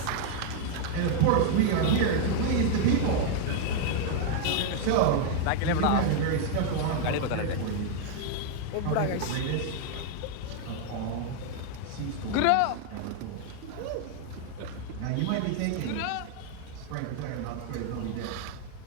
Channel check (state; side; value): different; both; correlation 0.00